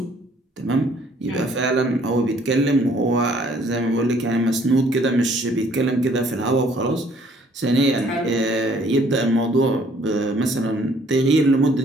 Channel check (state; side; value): normal; both; correlation 0.61